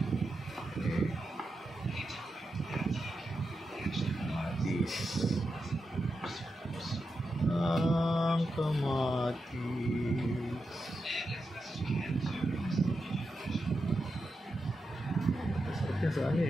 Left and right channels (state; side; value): normal; both; correlation 0.88